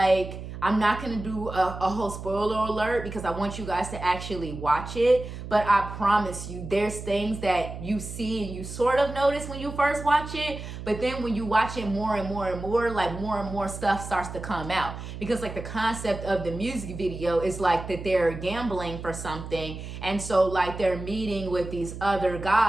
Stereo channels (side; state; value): right; noise; hum, 10 dB below the sound